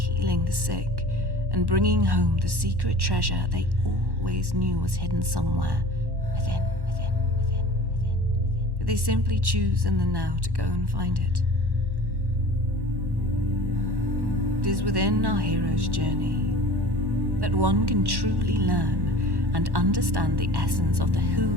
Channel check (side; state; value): left; late; 1.1 ms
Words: the sick, and bringing home the secret treasure they always knew was hidden somewhere within. But they simply choose in the now to go and find it. It is within our hero's journey that one can truly learn and understand the essence of the